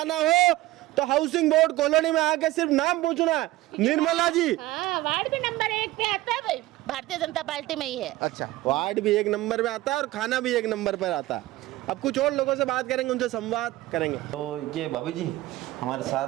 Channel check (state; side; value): quieter; left; 17.2 dB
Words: हो तो हाउसिंग बोर्ड कॉलोनी में आके सिर्फ नाम पूछना है। निर्मला जी वार्ड भी नंबर 1 पे आता है भाई, भारतीय जनता पार्टी में ही है। अच्छा, वार्ड भी 1 नंबर पे आता है और खाना भी 1 नंबर पर आता है। अब कुछ और लोगों से बात करेंगे, उनसे संवाद करेंगे। तो ये भाभी जी हमारे